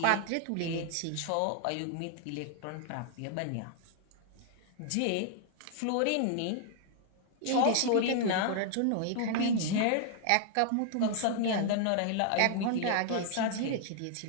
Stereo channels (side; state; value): both; different; correlation 0.00